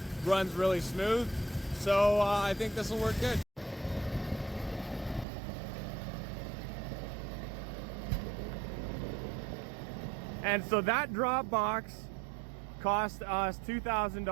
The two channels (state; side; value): drops out; left; at 5.2 s